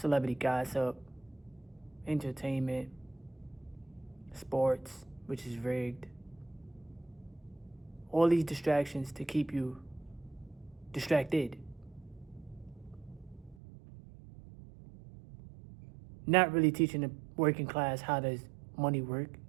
gossip, entertainment, sports, which is rigged. All these distractions to keep you distracted. Not really teaching the working class how does money work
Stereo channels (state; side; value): drops out; left; at 13.6 s